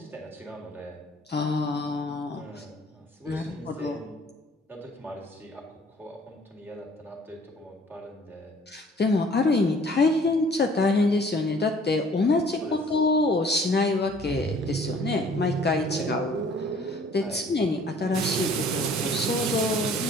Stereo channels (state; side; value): normal; both; correlation 0.55